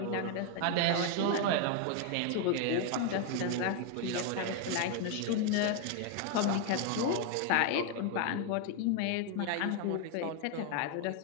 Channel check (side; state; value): both; different; correlation 0.01